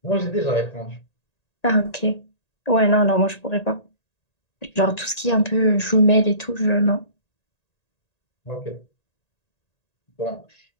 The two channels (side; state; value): right; late; 1.8 ms